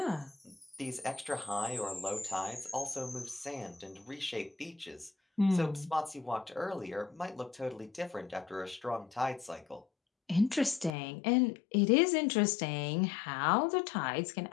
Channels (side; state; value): right; drops out; at 10.9 s